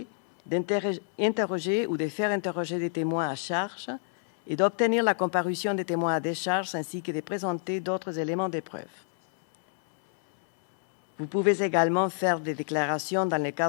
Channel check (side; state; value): right; silent; 59 dB below the other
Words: d'interroger ou de faire interroger des témoins à charge et d'obtenir la comparution des témoins à décharge ainsi que de présenter d'autres éléments de preuve. Vous pouvez également faire des déclarations dans le